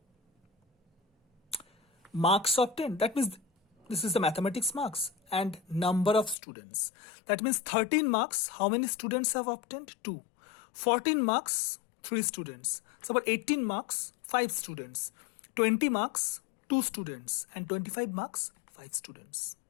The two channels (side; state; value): right; drops out; at 6.4 s